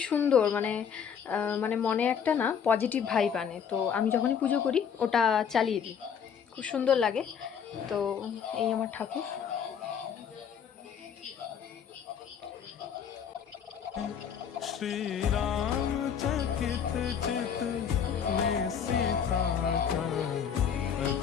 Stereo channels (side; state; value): right; quieter; 7.6 dB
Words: সুন্দর, মানে মানে মনে একটা না পজিটিভ ভাইব আনে। তো আমি যখনই পুজো করি ওটা চালিয়ে দিই, খুব সুন্দর লাগে। তো এই আমার ঠাকুর। श्री राम चकित चित में सीता का